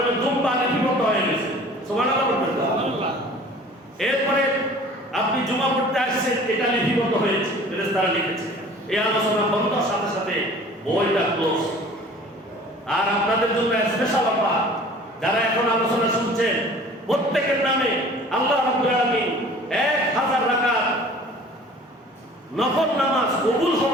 দুম্বা লিপিবদ্ধ হয়ে গেছে, সুবহানাল্লাহ বলেন। এরপরে আপনি জুমা পড়তে আসছেন, এটা লিপিবদ্ধ হয়েছে, ফেরেশতারা লিখেছে। এই আলোচনা বন্ধর সাথে সাথে বইটা ক্লোজ। আর আপনাদের জন্য স্পেশাল অফার, যারা এখন আলোচনা শুনছেন প্রত্যেকের নামে আল্লাহ রাব্বুল আলামিন 1000 রাকাত নফল নামাজ, কবুল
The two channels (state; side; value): normal; both; correlation 0.47